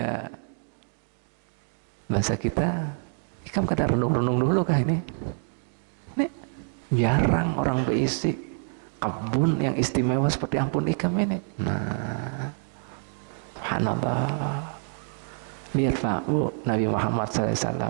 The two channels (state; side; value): silent; left; 60 dB below the other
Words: Bahasa kita, ikam kada renung-renung dulu kah ini? Ini jarang orang berisi kebun yang istimewa seperti ampun ikam ini. Nah, subhanallah. Lihat Pak Bu, Nabi Muhammad